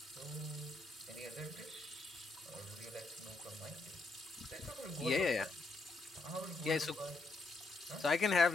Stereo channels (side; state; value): right; quieter; 3.4 dB